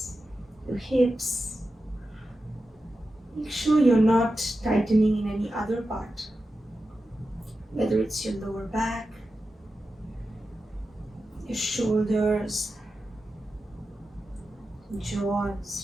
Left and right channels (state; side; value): normal; both; correlation 0.91